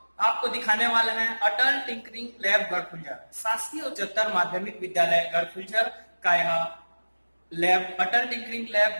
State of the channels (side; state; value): both; inverted; correlation -1.00